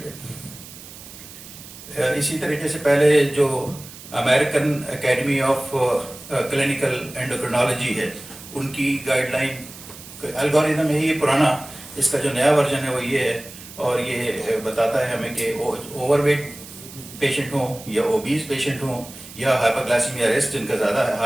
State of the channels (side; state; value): right; noise; hiss, 16 dB below the sound